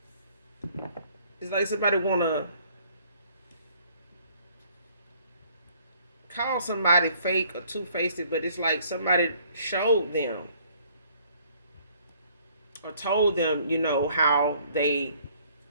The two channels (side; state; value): both; inverted; correlation -0.60